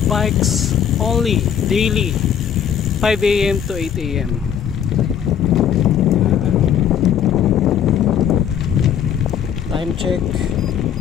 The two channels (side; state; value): right; quieter; 8.9 dB